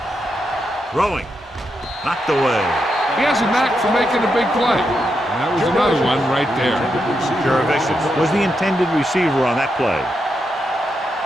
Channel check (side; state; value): both; normal; correlation 0.84